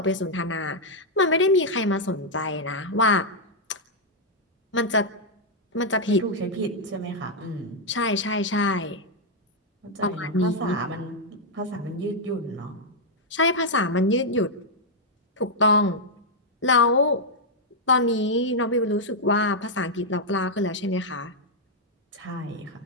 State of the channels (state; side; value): normal; both; correlation -0.03